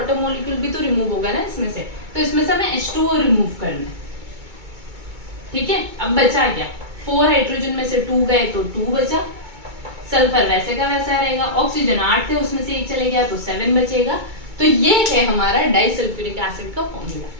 मॉलिक्यूल भी तो रिमूव होगा ना इसमें से, तो इसमें से हमें H2O रिमूव करना है। ठीक है, अब बचा क्या, 4 हाइड्रोजन में से 2 गए तो 2 बचा, सल्फर वैसे का वैसा रहेगा, ऑक्सीजन 8 थे उसमें से 1 चले गया तो 7 बचेगा। तो ये है हमारा डाइसल्फ्यूरिक एसिड का फॉर्मूला।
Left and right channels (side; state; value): left; late; 2.2 ms